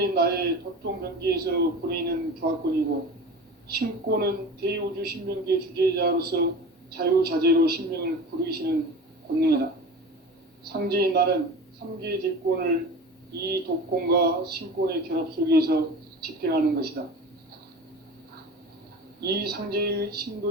나의 도통병기에서 부리는 조합권이고, 신곤은 대우주 신명기의 주제자로서 자유자재로 신명을 부르시는 권능이다. 상제인 나는 삼계의 뒷권을 이 독곤과 신곤의 결합 속에서 집행하는 것이다. 이 상제의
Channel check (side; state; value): both; normal; correlation 0.34